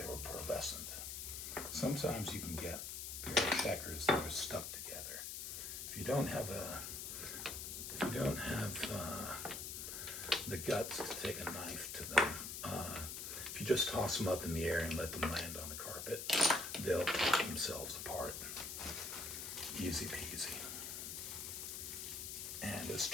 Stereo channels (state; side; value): noise; left; hiss, 6 dB below the sound